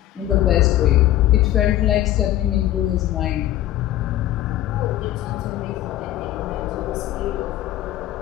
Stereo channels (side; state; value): right; quieter; 13.7 dB